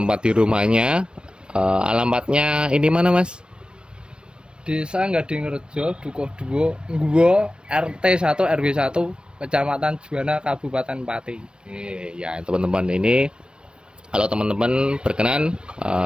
di rumahnya. Alamatnya ini mana Mas? Desa Gadingrejo, Dukuh 2, Ngguwo, RT 1 RW 1, Kecamatan Juwana, Kabupaten Pati. Oke, ya teman-teman, ini kalau teman-teman berkenan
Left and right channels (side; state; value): left; late; 0.055 ms